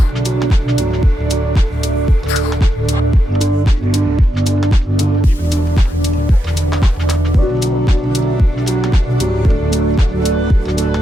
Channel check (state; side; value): normal; both; correlation 0.84